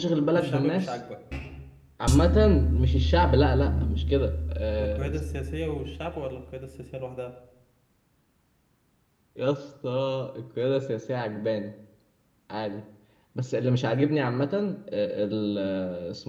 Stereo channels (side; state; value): both; identical; correlation 1.00